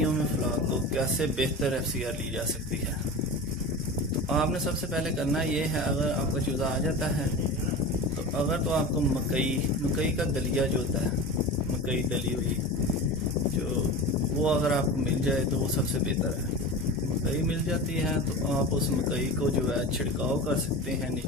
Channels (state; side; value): normal; both; correlation 0.30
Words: में फ्लॉक को कैसे बेहतर FCR ली जा सकती है। तो आपने सबसे पहले करना ये है, अगर आपका चूज़ा आ जाता है तो आपको मकई का दलिया जो होता है, मकई दली हुई जो वो अगर आपको मिल जाए तो वो सबसे बेहतर है। मकई मिल जाती है तो आप उस मकई को जो है छिड़काव कर सकते हैं